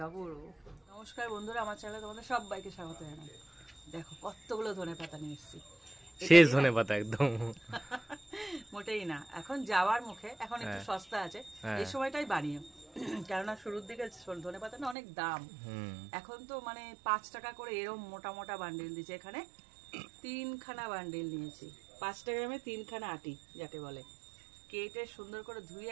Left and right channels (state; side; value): drops out; left; at 15.0 s